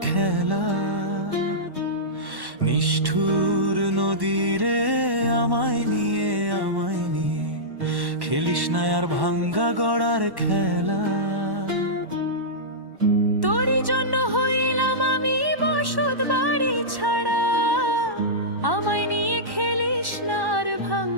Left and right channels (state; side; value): late; left; 1.1 ms